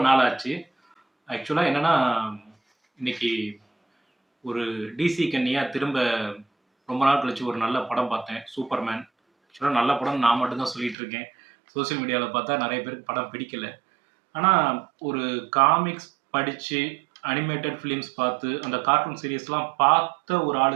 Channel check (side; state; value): left; drops out; at 11.0 s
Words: ஆச்சு. ஆக்சுவலா என்னன்னா, இன்னைக்கு ஒரு டிசி கன்னியா திரும்ப ரொம்ப நாள் கழிச்சு ஒரு நல்ல படம் பார்த்தேன். சூப்பர்மேன். ஆக்சுவலா நல்ல படம்னு நான் மட்டும் தான் சொல்லிட்டு இருக்கேன். சோசியல் மீடியால பார்த்தா நெறைய பேருக்கு படம் பிடிக்கல. ஆனா, ஒரு காமிக்ஸ் படிச்சு, அனிமேட்டட் ஃபிலிம்ஸ் பார்த்து, அந்த கார்ட்டூன் சீரிஸ்லாம் பார்த்த ஒரு